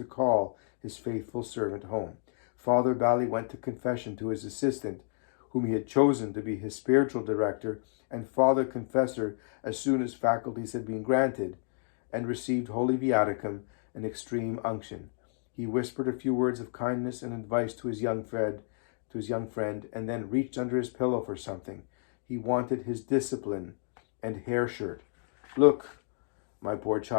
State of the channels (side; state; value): right; silent; 57 dB below the other